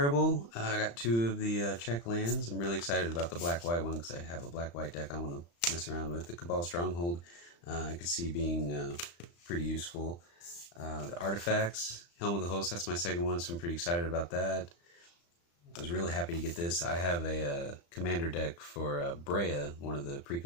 I got 2 of the Czech lands. I'm really excited about the black-white one because I have a black-white deck I want to mess around with. The Cabal Stronghold, I could see being pretty useful. The artifacts, Helm of the Host, that's my second one, so I'm pretty excited about that. I was really happy to get this. I have a commander deck for Brea, one of the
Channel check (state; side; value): late; right; 35 ms